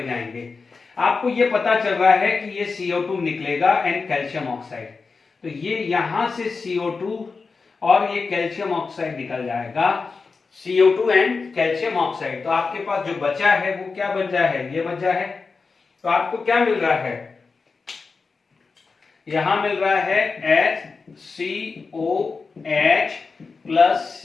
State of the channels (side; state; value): right; quieter; 4.5 dB